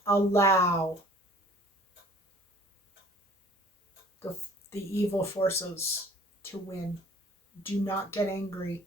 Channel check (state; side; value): normal; both; correlation 0.51